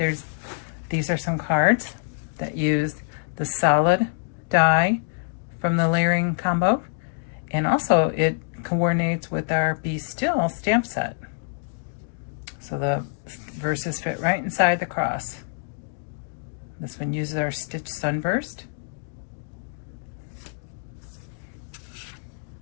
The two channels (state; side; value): silent; right; digital silence